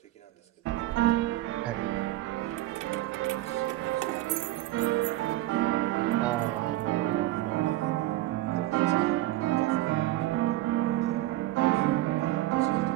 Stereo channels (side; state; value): left; quieter; 15.9 dB